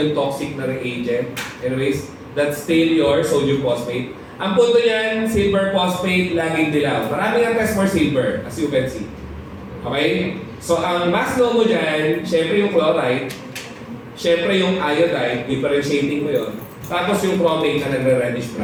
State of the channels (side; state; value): both; identical; correlation 1.00